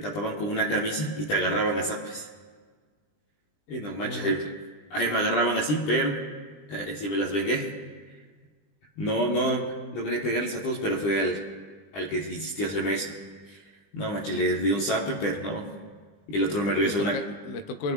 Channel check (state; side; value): late; right; 20 ms